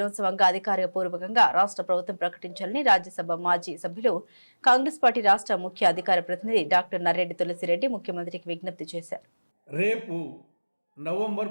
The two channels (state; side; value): inverted; both; correlation -1.00